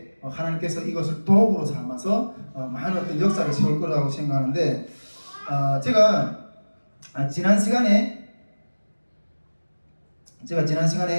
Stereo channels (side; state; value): both; inverted; correlation -1.00